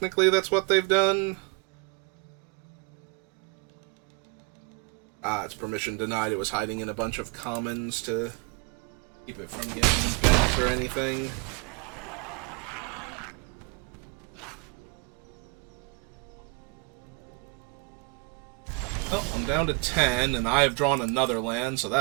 that's what they've done. Ah, it's permission denied. It was hiding in a bunch of commons to keep it from getting bent or anything. Oh, I'm down to 10, and I have drawn another land, so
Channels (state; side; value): quieter; left; 31.0 dB